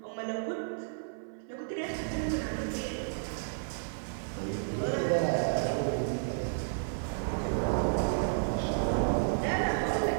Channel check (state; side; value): silent; left; 55 dB below the other